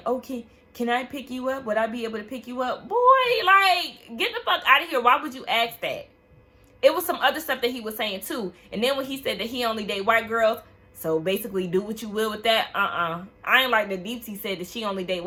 okay, can I pick you up? Would I be able to pick you up? Boy, like, get the fuck out of here. Why would you ask that? It was some other stuff that he was saying, too. And then when he said that he only date white girls, so basically do what you will with that, I ain't like that Deepti said that she only date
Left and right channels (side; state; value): both; identical; correlation 1.00